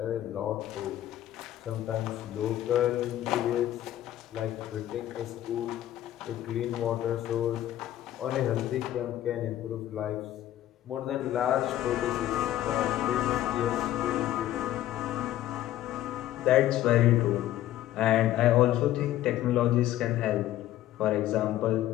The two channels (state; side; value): quieter; right; 13.4 dB